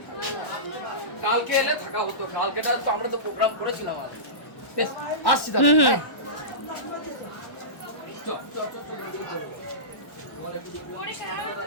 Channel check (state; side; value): late; right; 1.1 ms